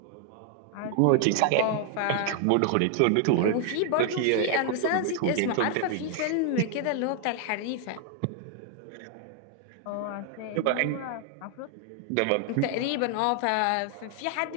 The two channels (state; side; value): different; both; correlation 0.00